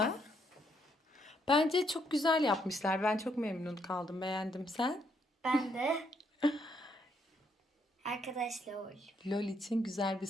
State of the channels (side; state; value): both; normal; correlation 0.73